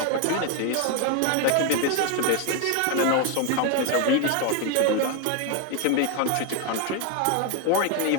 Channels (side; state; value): both; different; correlation 0.01